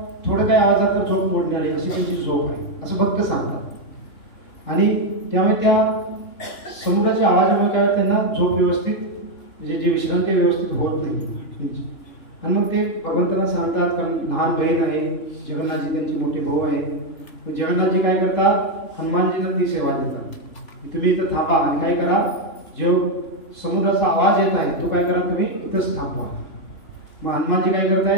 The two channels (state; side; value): late; right; 3.7 ms